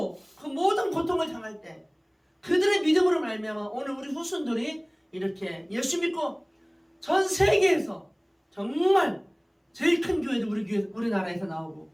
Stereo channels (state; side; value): identical; both; correlation 1.00